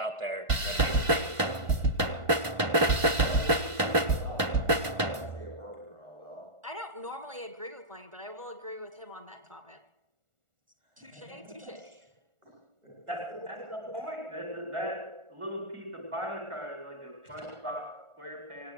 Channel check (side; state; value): left; late; 1.4 ms